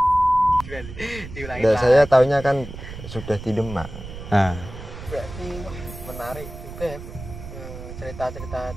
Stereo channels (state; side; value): noise; right; rumble, 12 dB below the sound